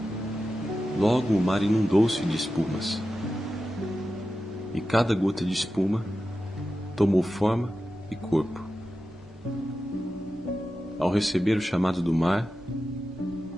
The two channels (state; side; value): normal; both; correlation 0.92